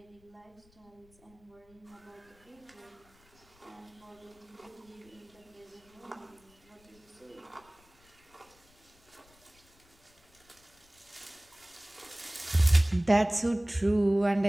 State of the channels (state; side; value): noise; left; rumble, 30 dB below the sound